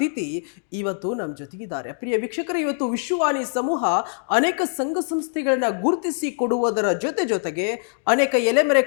ಇವತ್ತು ನಮ್ಮ ಜೊತೆಗಿದ್ದಾರೆ. ಪ್ರಿಯ ವೀಕ್ಷಕರು, ಇವತ್ತು ವಿಶ್ವವಾಣಿ ಸಮೂಹ ಅನೇಕ ಸಂಘ ಸಂಸ್ಥೆಗಳನ್ನ ಗುರುತಿಸಿ ಕೊಡುವುದರ ಜೊತೆಗೆ ಅನೇಕ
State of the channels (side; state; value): right; silent; digital silence